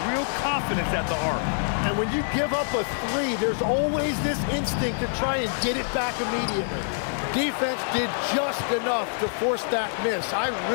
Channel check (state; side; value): silent; right; digital silence